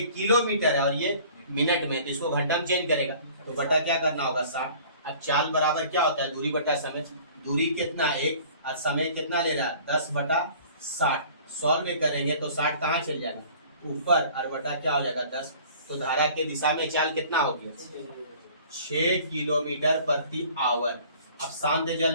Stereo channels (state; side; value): inverted; both; correlation -0.49